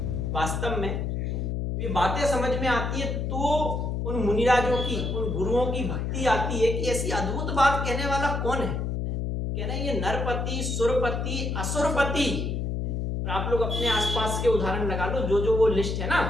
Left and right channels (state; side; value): noise; left; hum, 1 dB below the sound